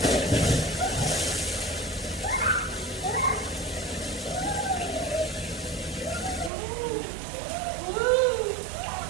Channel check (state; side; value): drops out; left; at 6.5 s